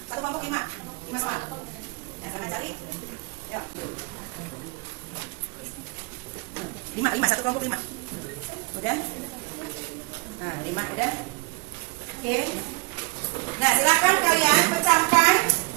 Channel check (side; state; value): left; quieter; 27.8 dB